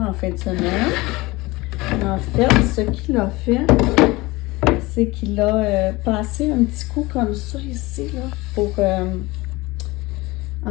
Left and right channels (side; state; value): right; quieter; 21.5 dB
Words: en fin de semaine. En fait, ce qu'il a fait, c'est qu'il a passé un petit coup comme ça ici, là, pour